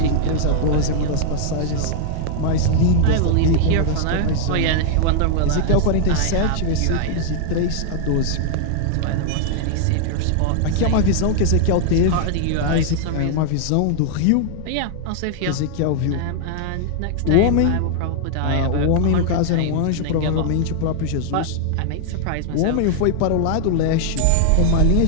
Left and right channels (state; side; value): different; both; correlation -0.01